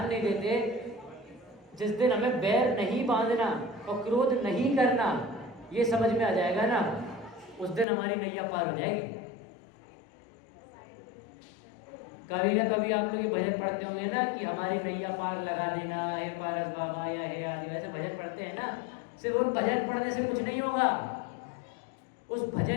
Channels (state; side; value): drops out; right; at 7.9 s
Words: नहीं देते। जिस दिन हमें बैर नहीं बांधना और क्रोध नहीं करना ये समझ में आ जाएगा ना, उस दिन हमारी नैया पार हो जाएगी। कभी ना कभी आप लोग ये भजन पढ़ते होंगे ना कि हमारी नैया पार लगा देना, हे पारस बाबा या हे आदि, ऐसे भजन पढ़ते हैं ना। सिर्फ उन भजन पढ़ने से कुछ नहीं होगा। उस